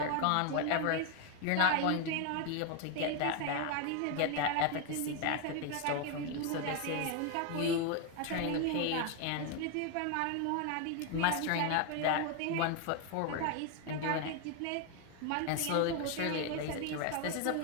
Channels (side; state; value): both; different; correlation 0.01